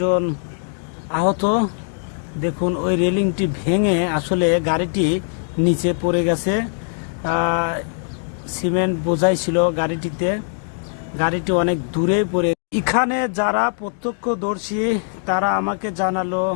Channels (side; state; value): right; silent; digital silence